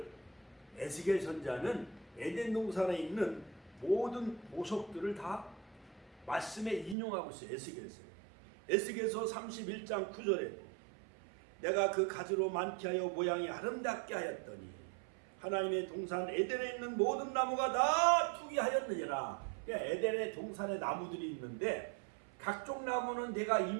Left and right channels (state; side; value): drops out; left; at 7.0 s